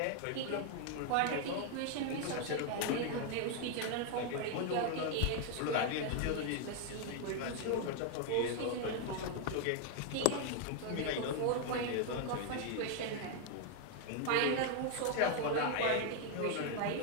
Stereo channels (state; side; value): different; both; correlation 0.00